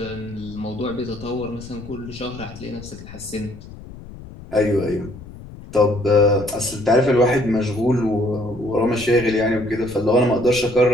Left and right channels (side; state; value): left; noise; rumble, 16 dB below the sound